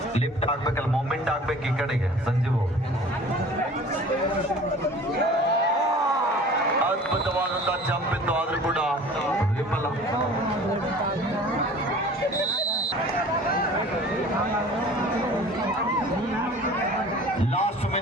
ಲಿಫ್ಟ್ ಆಗ್ಬೇಕಲ್ಲ, ಮೂಮೆಂಟ್ ಆಗ್ಬೇಕು ಈ ಕಡೆಗೆ. ಸಂಜೀವ್ ಅದ್ಭುತವಾದಂತಹ ಜಂಪ್ ಇತ್ತು, ಆದ್ರೂ ಕೂಡ ವಿಫಲ. ಲಾಸ್ಟ್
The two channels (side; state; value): both; normal; correlation 0.45